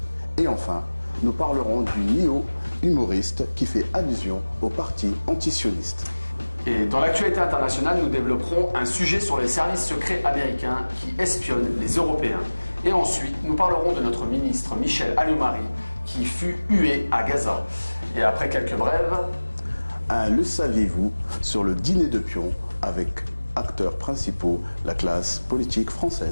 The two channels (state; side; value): inverted; both; correlation -1.00